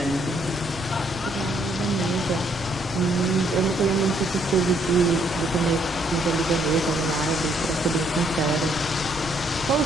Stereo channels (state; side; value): noise; right; rumble, 16 dB below the sound